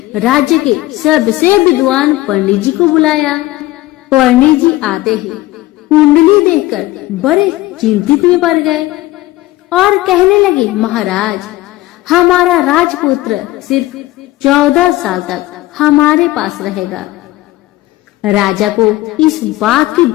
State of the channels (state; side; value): quieter; right; 17.4 dB